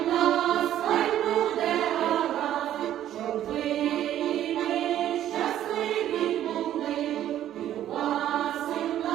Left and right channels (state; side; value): quieter; left; 11.8 dB